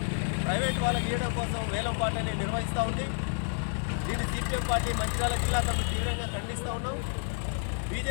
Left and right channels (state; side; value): silent; right; 58 dB below the other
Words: ప్రైవేట్ వాళ్ళకి ఇవ్వడం కోసం వేలంపాటని నిర్వహిస్తూ ఉంది. దీన్ని సిపిఎం పార్టీ మంచిర్యాల జిల్లా కమిటీ తీవ్రంగా ఖండిస్తూ ఉన్నాం.